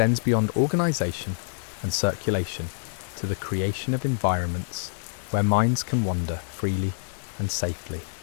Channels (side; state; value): right; silent; digital silence